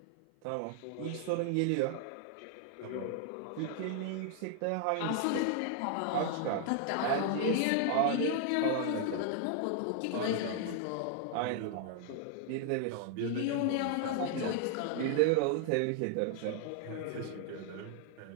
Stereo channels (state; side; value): different; both; correlation 0.00